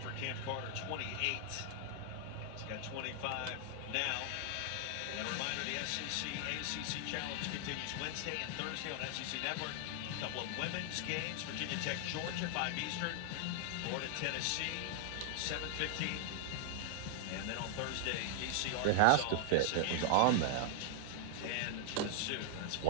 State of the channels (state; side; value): different; both; correlation 0.00